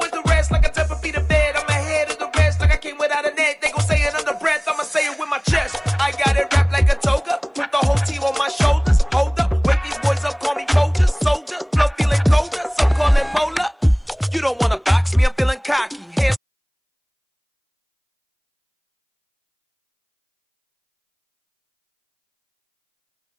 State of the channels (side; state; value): both; identical; correlation 1.00